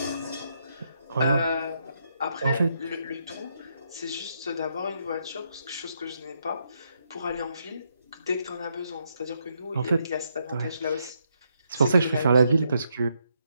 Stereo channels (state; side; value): inverted; both; correlation -0.77